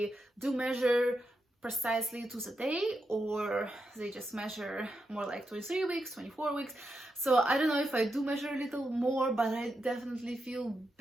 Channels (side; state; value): both; normal; correlation 0.86